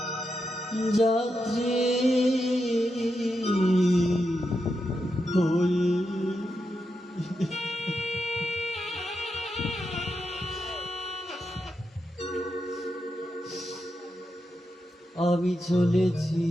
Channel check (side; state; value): both; normal; correlation 0.86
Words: যাত্রী হয়ে আমি চলেছি